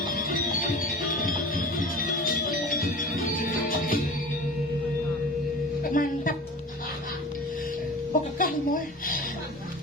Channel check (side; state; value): both; normal; correlation 0.37